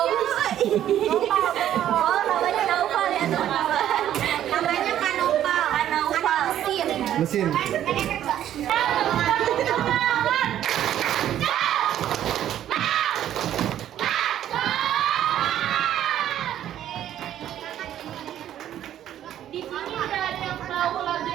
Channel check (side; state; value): left; quieter; 11.4 dB